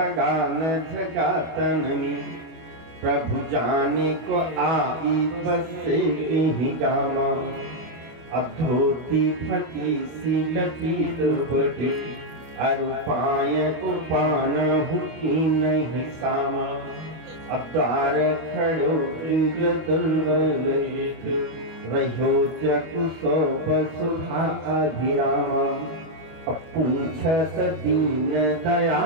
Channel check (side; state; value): left; late; 25 ms